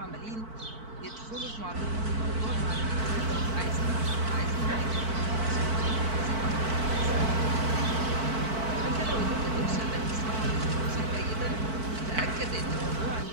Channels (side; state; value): left; late; 4.5 ms